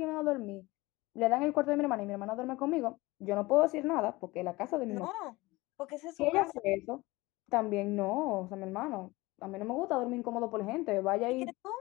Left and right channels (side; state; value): right; quieter; 21.2 dB